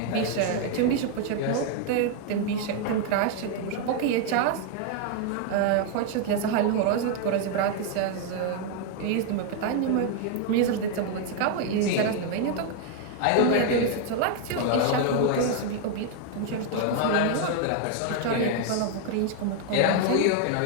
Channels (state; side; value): different; both; correlation 0.00